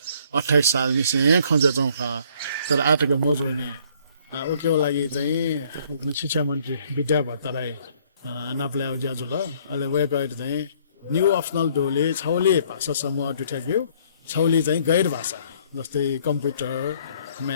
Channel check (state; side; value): inverted; both; correlation -0.62